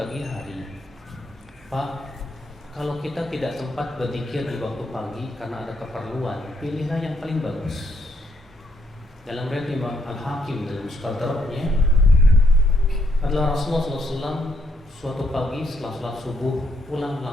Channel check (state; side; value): normal; both; correlation 0.74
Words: hari? Pak, kalau kita tidak sempat berzikir di waktu pagi karena ada keperluan, pilihlah yang paling bagus. Dalam riwayat Imam Al-Hakim dalam Mustadraknya adalah Rasulullah SAW suatu pagi setelah sholat subuh pulang